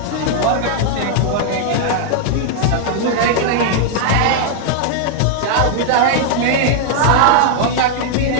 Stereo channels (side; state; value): both; different; correlation -0.01